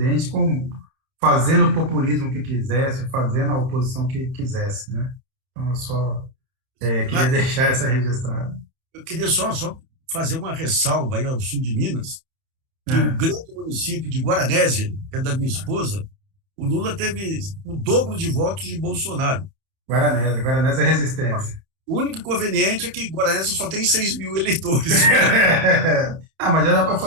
fazendo o populismo que quisesse, fazendo a oposição que quisesse, né? Então, eu só queria deixar essa registrada. Eu queria só fazer uma ressalva aí ao sul de Minas, que o grande município de Guaranésia, que é da minha esposa, o Lula teve o dobro de votos de Bolsonaro. Guaranésia é resistência. O único inconveniente é que Guaranésia só tem 6 mil eleitores. Mas já dá para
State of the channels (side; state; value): left; late; 30 ms